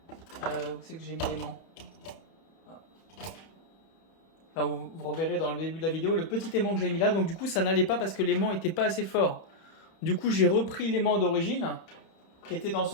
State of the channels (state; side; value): late; right; 31 ms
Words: Où c'est que j'ai mis l'aimant? Enfin, vous reverrez dans le début de la vidéo le petit aimant que j'ai mis là. Donc du coup ça n'allait pas parce que l'aimant n'était pas assez fort. Du coup j'ai repris l'aimant d'origine qui était dans